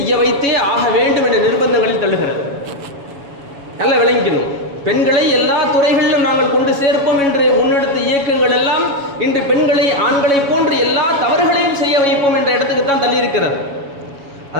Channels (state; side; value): late; left; 7.2 ms